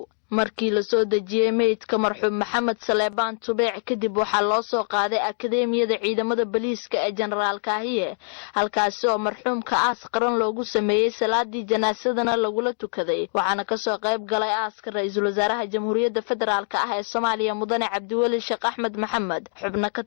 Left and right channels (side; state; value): right; silent; digital silence